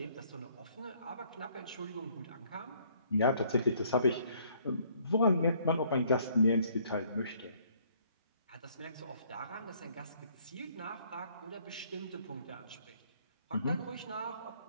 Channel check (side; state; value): both; inverted; correlation -0.63